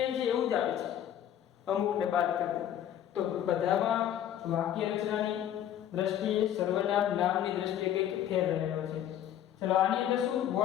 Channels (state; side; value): quieter; right; 10.8 dB